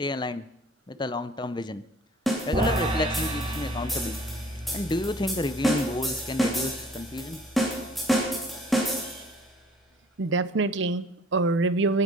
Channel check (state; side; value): normal; both; correlation 0.52